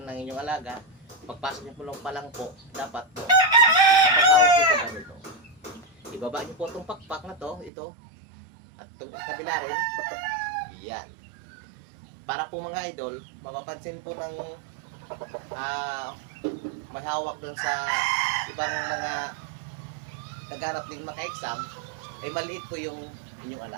ng inyong alaga, pagpasok niyo po lang po, dapat po, paghawak niyo po ganito. Ibaba niyo po itong pakpak na to, ito, at itong kabila rin, yan. Para po mga idol, mapapansin po ng may hawak dun sa ibang mga nagharap din maka-exam, ay maliit po yung inyong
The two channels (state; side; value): drops out; left; at 7.7 s